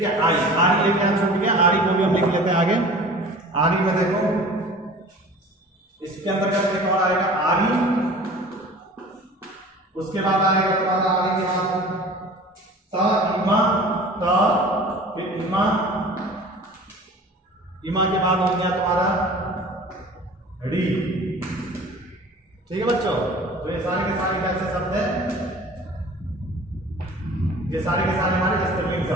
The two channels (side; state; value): both; normal; correlation 0.43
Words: है। आरी, आरी एक यहाँ छूट गया, आरी को भी हम लिख लेते हैं आगे। आरी में देखो, इसके अंतर्गत एक और आएगा आरी, उसके बाद आएगा तुम्हारा आरी के बाद ता, इमा, ता, फिर इमा, इमा के बाद हो गया तुम्हारा री, ठीक है बच्चों। तो ये सारे के सारे कैसे शब्द हैं? ये सारे के सारे हमारे स्त्रीलिंग